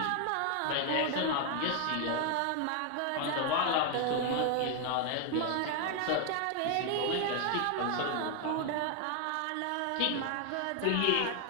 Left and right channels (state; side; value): different; both; correlation 0.00